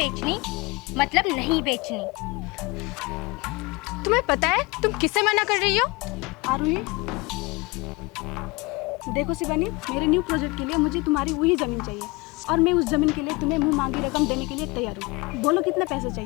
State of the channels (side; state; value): right; quieter; 24.9 dB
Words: मतलब नहीं बेचनी। तुम्हें पता है तुम किसे मना कर रही हो? आरुही, देखो शिवानी, मेरे न्यू प्रोजेक्ट के लिए मुझे तुम्हारी वही ज़मीन चाहिए और मैं उस ज़मीन के लिए तुम्हें मुंह मांगी रकम देने के लिए तैयार हूँ। बोलो कितने पैसे